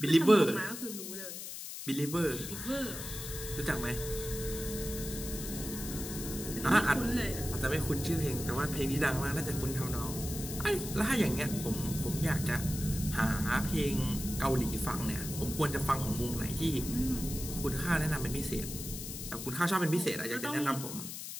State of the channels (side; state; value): left; noise; hiss, 8 dB below the sound